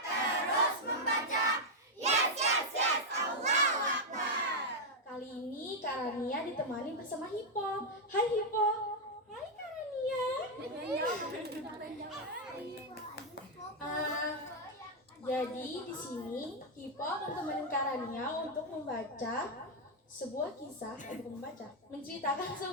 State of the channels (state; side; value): normal; both; correlation -0.01